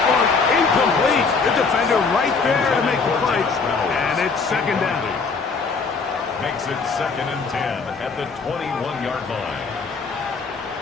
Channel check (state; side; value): quieter; right; 4.7 dB